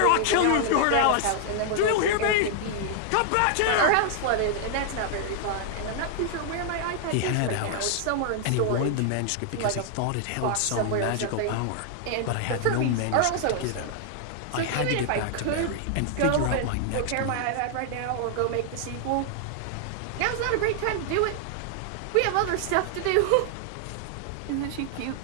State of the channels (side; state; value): both; different; correlation 0.00